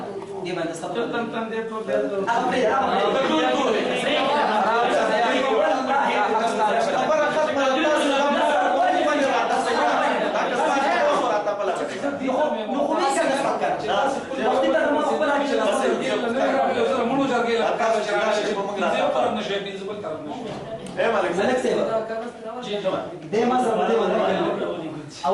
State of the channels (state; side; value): identical; both; correlation 1.00